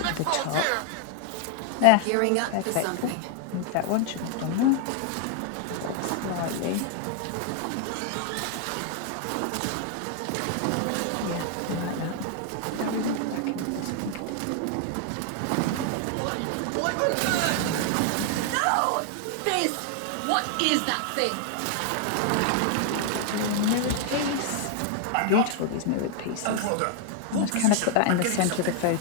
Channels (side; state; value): both; different; correlation 0.00